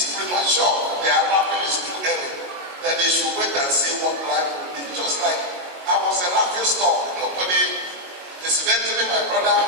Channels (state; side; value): late; left; 22 ms